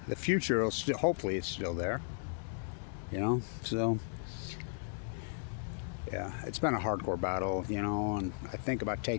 the future will still, hopefully, it's still there. You know, so yeah, it's been a hardcore battle. You know, and I think about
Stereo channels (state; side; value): silent; right; digital silence